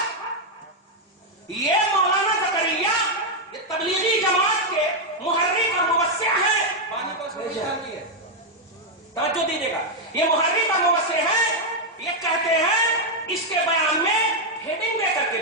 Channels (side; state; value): both; normal; correlation 0.00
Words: یہ مولانا زکریا یہ تبلیغی جماعت کے محرک اور مبصر ہیں. پانی کو توجہ دیجیے گا. یہ محرک اور مبصر ہیں. یہ کہتے ہیں اس کے بیان میں ہیڈنگ دے کر کے